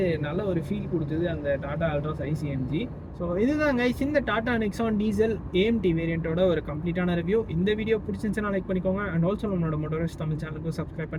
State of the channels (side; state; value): both; identical; correlation 1.00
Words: நல்ல ஒரு ஃபீல் கொடுத்தது அந்த டாடா அல்ட்ராஸ் ICMG. ஸோ இதுதான் கைஸ் இந்த டாடா நெக்ஸான் டீசல் AMT வேரியண்ட்டோட ஒரு கம்ப்ளீட்டான ரிவ்யூ. இந்த வீடியோ பிடிச்சிருந்துச்சுன்னா லைக் பண்ணிக்கோங்க. அண்ட் ஆல்சோ நம்மளோட மோட்டோரிஸ்ட் தமிழ் சேனலுக்கு சப்ஸ்கிரைப்